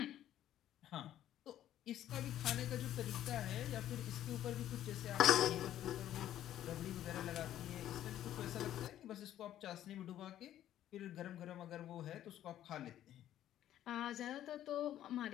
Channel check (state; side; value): quieter; right; 12.1 dB